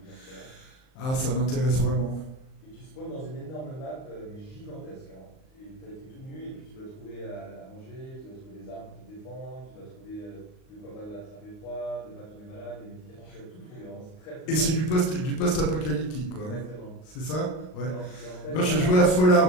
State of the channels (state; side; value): late; right; 38 ms